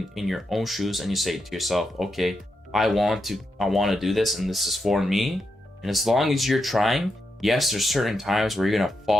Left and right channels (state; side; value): normal; both; correlation 0.84